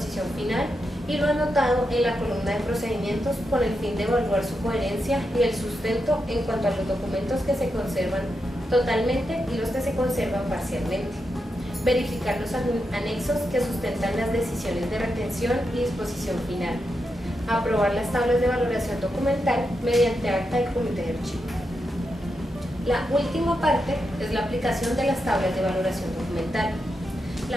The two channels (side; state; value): both; normal; correlation 0.86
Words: final y lo anotado en la columna de procedimientos con el fin de evaluar su coherencia y el sustento en cuanto a los documentos que se conservan totalmente y los que se conservan parcialmente. Verificar los anexos que sustentan las decisiones de retención y disposición final. Aprobar las tablas de valoración documental mediante acta del comité de archivo. La última parte es la aplicación de las tablas de valoración documental.